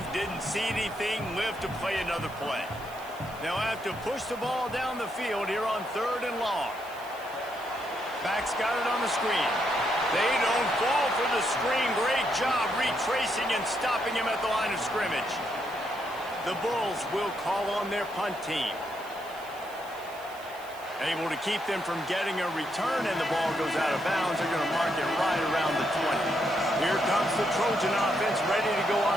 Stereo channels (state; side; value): noise; right; hiss, 21 dB below the sound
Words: didn't see anything, lived to play another play. They'll have to push the ball down the field here on 3rd and long. Back's got it on the screen. They don't fall for the screen. Great job retracing and stopping him at the line of scrimmage. The Bulls will call on their punt team. Able to keep them from getting a return, and the ball goes out of bounds. They're going to mark it right around the 20. Here comes the Trojan offense ready to go